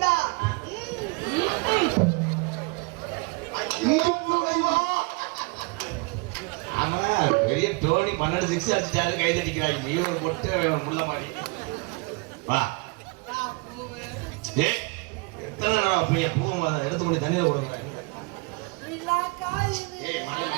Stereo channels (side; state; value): left; quieter; 28.9 dB